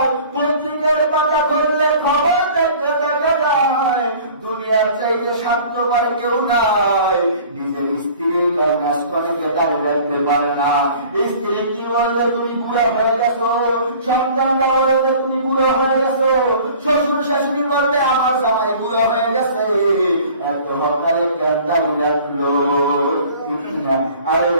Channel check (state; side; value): inverted; both; correlation -0.47